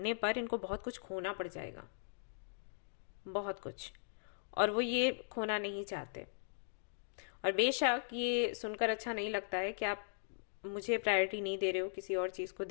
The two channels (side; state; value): right; silent; digital silence